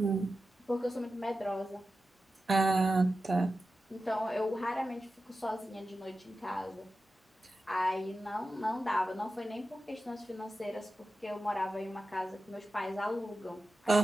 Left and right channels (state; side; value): normal; both; correlation 0.92